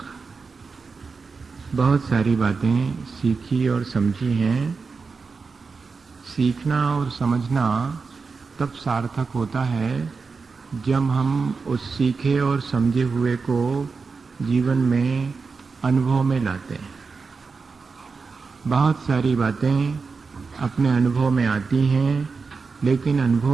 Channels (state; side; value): quieter; left; 4.7 dB